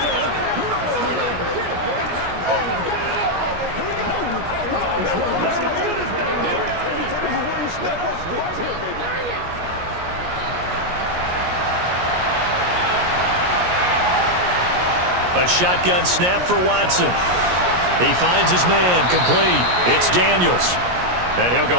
A shotgun snap for Watson. He finds his man, complete. It's Daniels. And he'll go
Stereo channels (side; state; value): left; late; 17 ms